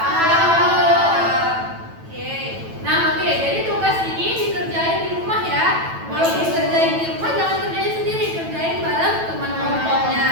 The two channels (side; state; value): left; late; 9.1 ms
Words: Oke. Nah, oke. Jadi tugas ini dikerjain di rumah ya. Kalau dikerjain di rumah jangan kerjain sendiri, kerjain bareng teman kelompoknya.